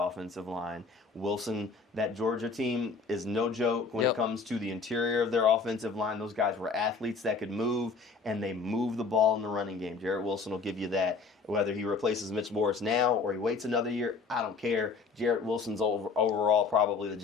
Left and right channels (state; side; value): quieter; right; 4.7 dB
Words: line. Wilson, that Georgia team is no joke when it comes to the interior of their offensive line. Those guys were athletes that could move, and they move the ball in the running game. Jarrett Wilson will give you that. Whether he replaces Mitch Morris now or he waits another year, I don't care. Jarrett Wilson's overall probably the